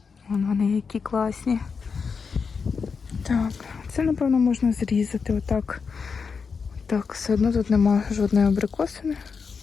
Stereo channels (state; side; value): quieter; right; 5.5 dB